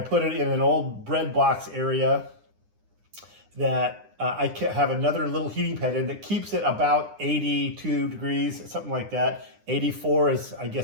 put it in an old bread box area that I have another little heating pad in that keeps it about 82 degrees, something like that. 84 is, I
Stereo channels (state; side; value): late; left; 9.8 ms